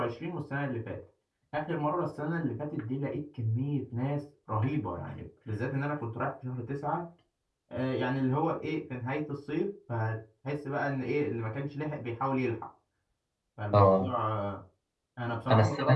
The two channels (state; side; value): identical; both; correlation 1.00